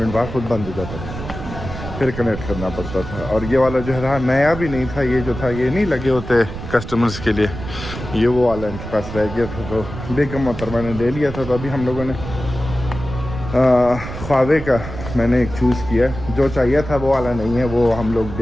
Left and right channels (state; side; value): noise; right; rumble, 9 dB below the sound